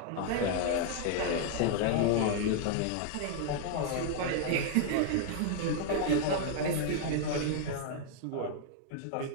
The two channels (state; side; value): different; both; correlation 0.00